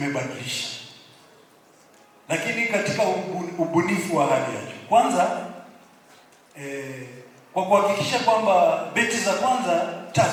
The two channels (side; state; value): both; identical; correlation 1.00